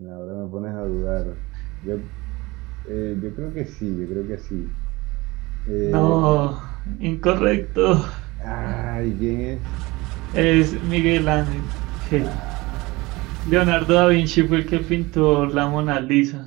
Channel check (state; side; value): quieter; left; 22.0 dB